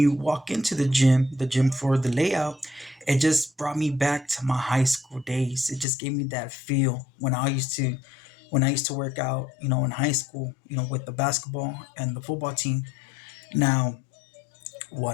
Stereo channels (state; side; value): drops out; right; at 5.9 s